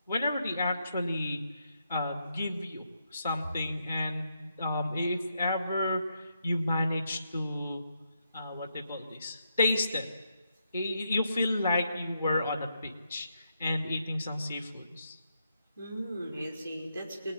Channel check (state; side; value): inverted; both; correlation -0.81